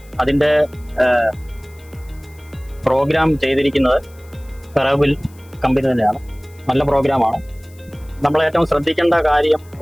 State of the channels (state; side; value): noise; left; hiss, 28 dB below the sound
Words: അതിൻ്റെ പ്രോഗ്രാം ചെയ്തിരിക്കുന്നത് ഫെറോബിൽ കമ്പനി തന്നെയാണ്. നല്ല പ്രോഗ്രാമാണ്. നമ്മൾ ഏറ്റവും ശ്രദ്ധിക്കേണ്ട കാര്യം